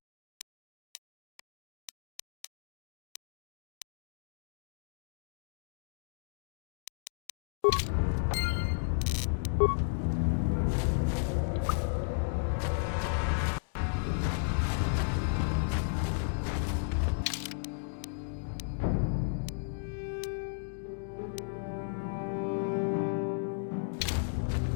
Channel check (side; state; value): right; silent; digital silence